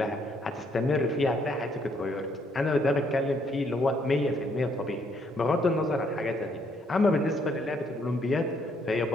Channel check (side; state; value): both; normal; correlation 0.69